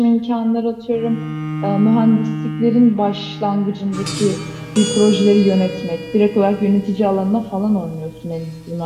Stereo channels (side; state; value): both; identical; correlation 1.00